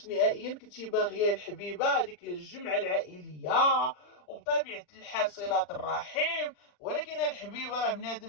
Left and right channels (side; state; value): right; late; 40 ms